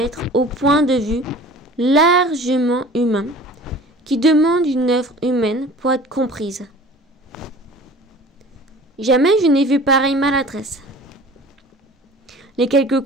au point de vue largement humain qui demande une œuvre humaine pour être comprise. Jamais je n'ai vu pareille maladresse. Les quelques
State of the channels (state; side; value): normal; both; correlation 0.44